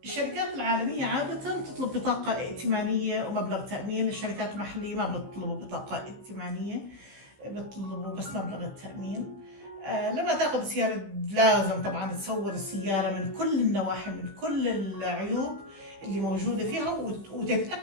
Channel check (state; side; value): late; left; 15 ms